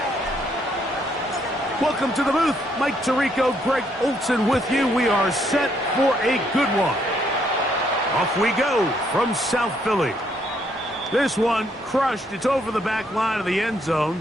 Welcome to the booth. Mike Tirico, Greg Olson with you. We are set for a good one. Off we go from South Philly. This one crushed. It's over the back line of the end zone.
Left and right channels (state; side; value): normal; both; correlation 0.71